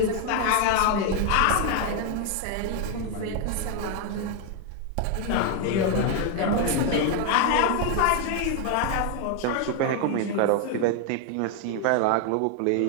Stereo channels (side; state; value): both; different; correlation 0.00